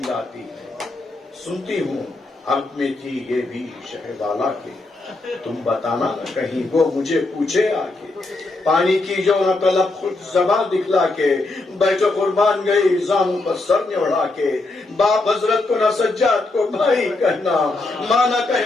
آتی ہے سنتی ہوں حق میں تھی یہ بھی شہ بالا کے تم بتانا نہ کہیں وہ مجھے پوچھے آ کے پانی کی جو نہ طلب خود زباں دکھلا کے بیٹھو قربان گئی زانوں پر سر نوڑا کے باپ حضرت کو نہ سجاد کو بھائی کہنا ماں نہ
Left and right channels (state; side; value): quieter; right; 3.1 dB